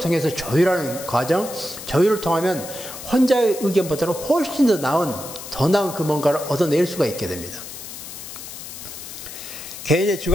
조율하는 과정, 조율을 통하면 혼자의 의견보다는 훨씬 더 나은 그 뭔가를 얻어낼 수가 있게 됩니다. 개인의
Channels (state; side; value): noise; left; hiss, 11 dB below the sound